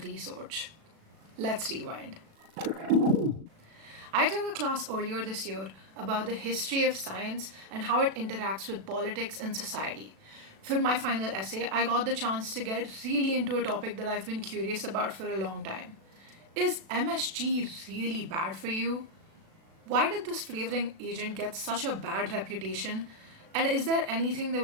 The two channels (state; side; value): late; left; 36 ms